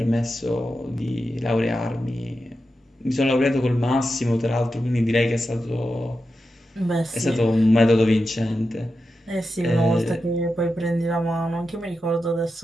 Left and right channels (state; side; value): normal; both; correlation 0.90